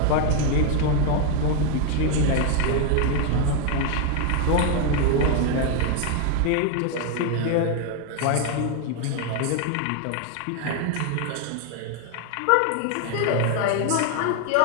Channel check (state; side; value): different; both; correlation 0.01